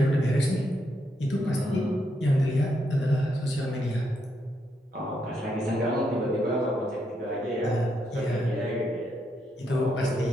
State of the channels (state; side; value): normal; both; correlation 0.79